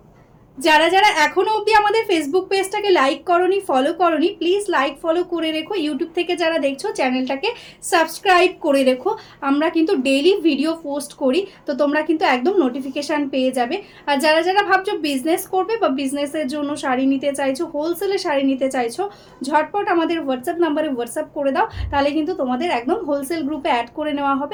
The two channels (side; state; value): both; identical; correlation 1.00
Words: যারা যারা এখনো অবধি আমাদের ফেসবুক পেজটাকে লাইক করনি, ফলো করনি, প্লিজ লাইক ফলো করে রেখো। ইউটিউব থেকে যারা দেখছো চ্যানেলটাকে সাবস্ক্রাইব করে রেখো। আমরা কিন্তু ডেইলি ভিডিও পোস্ট করি, তো তোমরা কিন্তু একদম নোটিফিকেশান পেয়ে যাবে। আর যারা যারা ভাবছো বিজনেস করবে বা বিজনেসের জন্য শাড়ি নিতে চাইছো, হোলসেলে শাড়ি নিতে চাইছো, ঝটপট আমাদের হোয়াটসঅ্যাপ নাম্বারে হোয়াটসঅ্যাপ করে দাও, তাহলে কিন্তু তোমাদের একদম হোলসেল গ্রুপে অ্যাড করে নেওয়া